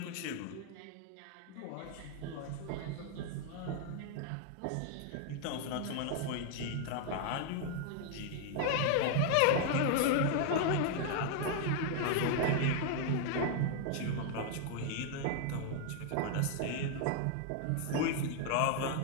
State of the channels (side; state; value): both; different; correlation 0.00